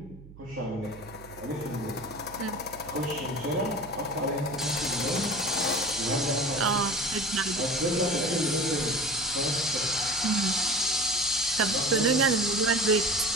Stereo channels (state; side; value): noise; right; hum, 19 dB below the sound